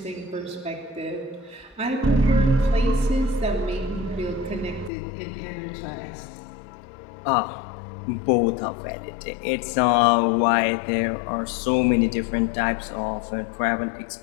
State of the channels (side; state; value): right; drops out; at 4.9 s